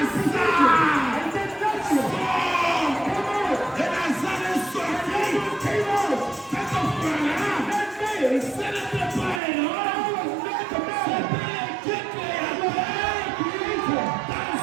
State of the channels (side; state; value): left; drops out; at 9.4 s